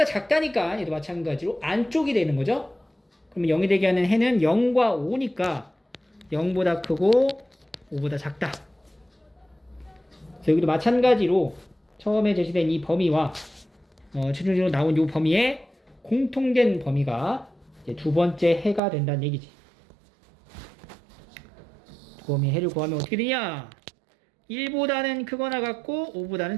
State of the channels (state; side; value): drops out; left; at 18.8 s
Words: 작다니까 얘도 마찬가지로 안쪽이 되는 거죠. 그러면 0이 되게 하는 해는 0과 5니까 0보다 크고 5보다 작다. 그래서 여기도 마찬가지로 처음에 제시된 이 범위와 최종적으로 나온 이 범위에 공통된 범위가 이제 두 번째 해가 된다는 얘기지. 두 범위의 해를 구하면 어떻게 되냐? 1보다는 크거나 같고 5보다는